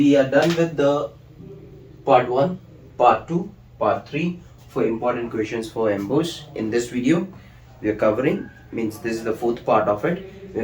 are done with the part 1, part 2, part 3 for important questions for MBOS. In this video, we are covering, means this is the fourth part of it, we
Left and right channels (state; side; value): identical; both; correlation 1.00